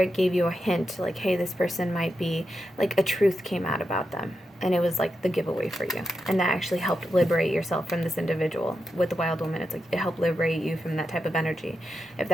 gave you a hint, like, hey, this person might be, like, a truth came out about them. And it was, like, the giveaway for you. And that actually helped liberate yourself from this individual. With the Wild Woman, it's like, it helped liberate you from that type of energy. If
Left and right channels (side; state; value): both; normal; correlation 0.87